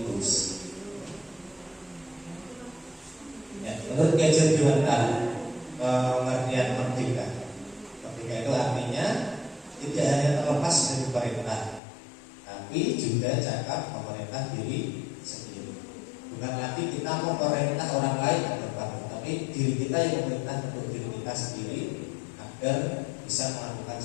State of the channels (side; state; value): right; drops out; at 11.8 s